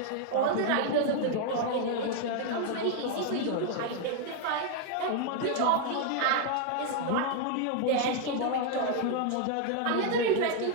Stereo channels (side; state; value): both; different; correlation 0.00